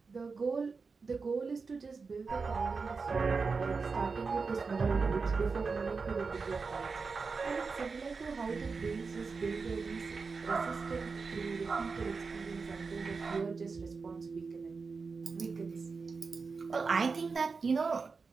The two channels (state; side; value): quieter; left; 4.7 dB